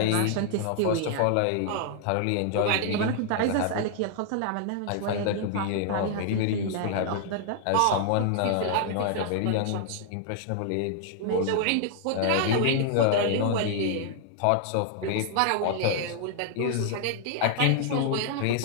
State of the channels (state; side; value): different; both; correlation 0.00